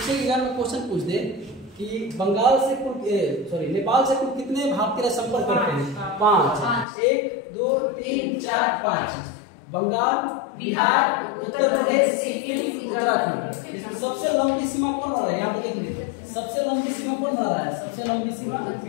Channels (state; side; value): drops out; right; at 6.9 s